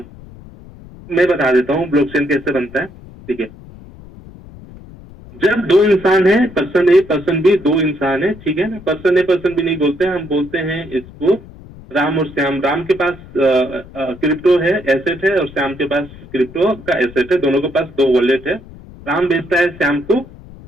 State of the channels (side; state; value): left; noise; rumble, 19 dB below the sound